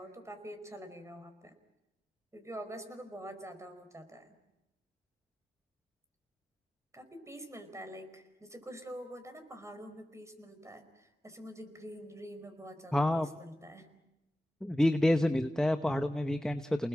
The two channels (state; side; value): normal; both; correlation 0.95